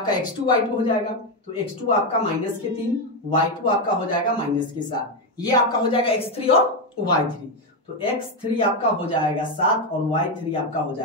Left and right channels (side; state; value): both; normal; correlation 0.07